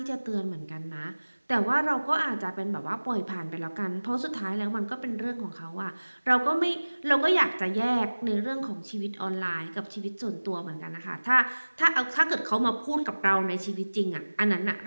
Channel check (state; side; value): inverted; both; correlation -1.00